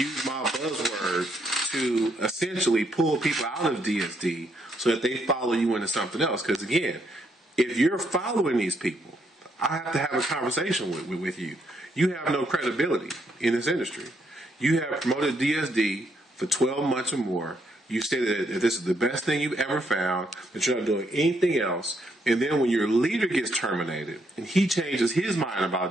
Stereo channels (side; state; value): both; normal; correlation 0.75